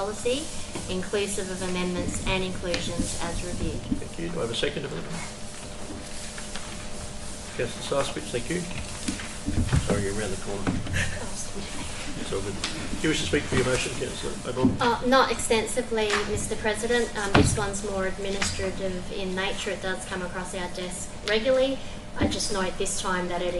inclusive of amendments and inclusions as reviewed. Thank you. Do I have a seconder for that? Councillor Sarswitch, thank you. Sorry, you're around the corner. It's all good. Do you wish to speak for your motion, Councillor Oborne? Not extensively, Mr. President. This one's more administrative in nature. It does come across our desk regularly. I just note this time that it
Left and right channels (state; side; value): identical; both; correlation 1.00